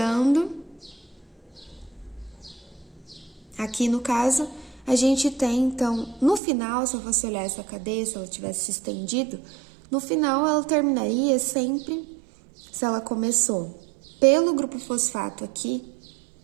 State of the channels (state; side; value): drops out; left; at 6.4 s